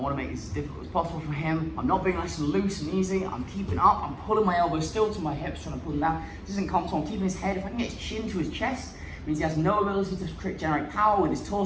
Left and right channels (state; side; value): identical; both; correlation 1.00